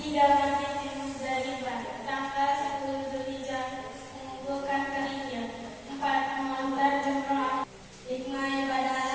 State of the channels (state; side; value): identical; both; correlation 1.00